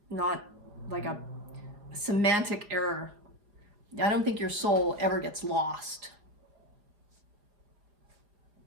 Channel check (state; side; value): late; left; 4.8 ms